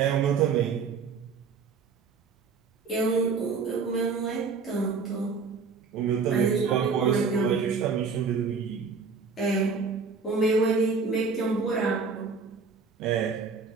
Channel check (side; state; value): left; quieter; 5.1 dB